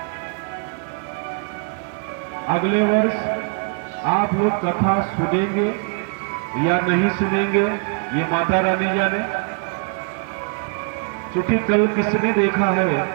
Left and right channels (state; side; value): quieter; left; 37.0 dB